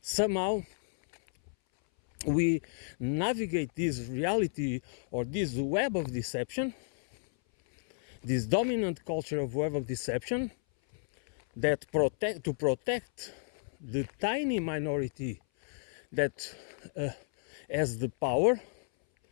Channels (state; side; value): silent; right; 56 dB below the other